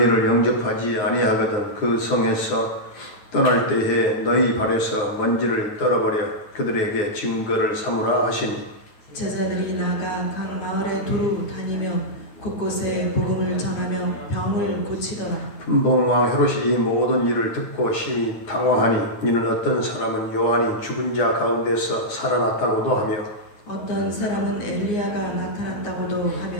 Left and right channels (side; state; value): right; late; 9.7 ms